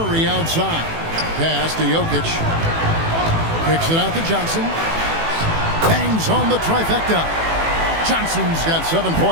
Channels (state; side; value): late; left; 18 ms